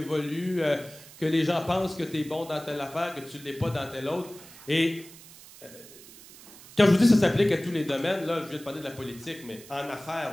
que les gens pensent que tu es bon dans telle affaire, que tu ne l'es pas dans telle autre. Et quand je vous dis que ça s'applique à tous les domaines, là, je viens de parler de la politique, mais en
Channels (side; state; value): right; noise; hiss, 19 dB below the sound